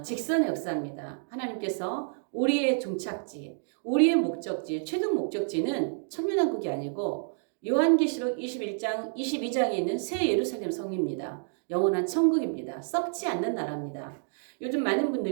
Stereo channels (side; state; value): left; silent; digital silence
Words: 직선의 역사입니다. 하나님께서 우리의 종착지, 우리의 목적지, 최종 목적지는 천년왕국이 아니고 요한계시록 21장, 22장에 있는 새 예루살렘 성입니다. 영원한 천국입니다. 썩지 않는 나라입니다. 요즘 많은